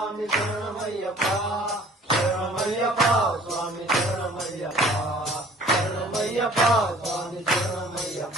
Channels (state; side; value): normal; both; correlation 0.52